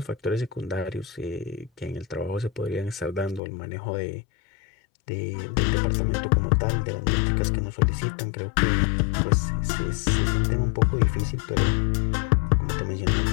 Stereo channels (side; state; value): right; drops out; at 3.4 s